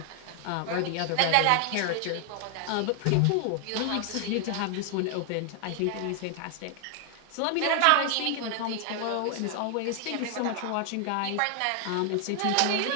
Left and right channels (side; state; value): both; different; correlation 0.00